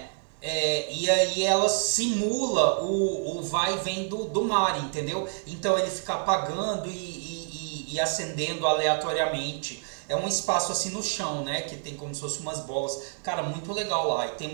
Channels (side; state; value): left; silent; 59 dB below the other